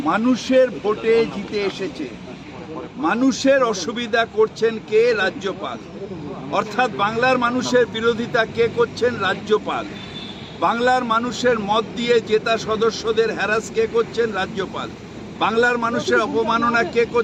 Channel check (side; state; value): both; identical; correlation 1.00